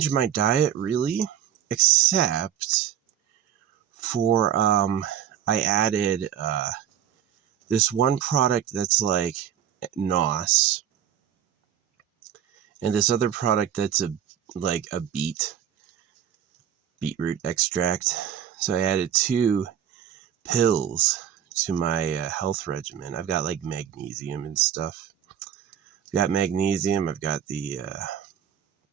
my diet really, except for I added this one product that's like NOS, and this other product that's like a beetroot extract. So I added 2 pills to my health regimen. I've got like magnesium and stuff. I've got magnesium. I've got the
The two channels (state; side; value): quieter; left; 9.7 dB